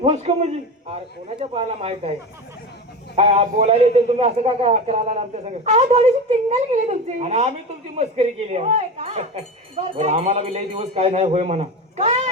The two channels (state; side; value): normal; both; correlation 0.25